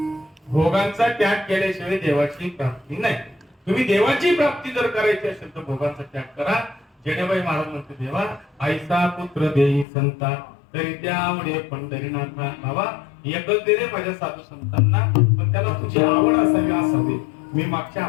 भोगांचा त्याग केल्याशिवाय देवाची प्राप्ती नाही. तुम्ही देवाची प्राप्ती जर करायची असेल तर भोगांचा त्याग करा. जेणेबाई महाराज म्हणते देवा आईचा पुत्र देई संता तरी त्या आवडे पंढरीनाथा. बाबा एकच दे रे माझ्या साधू संतांना पण त्याला तुझी आवड असावी असावी. मी मागच्या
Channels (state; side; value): drops out; right; at 9.9 s